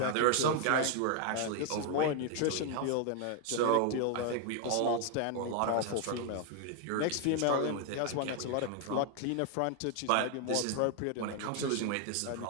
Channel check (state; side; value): different; both; correlation 0.00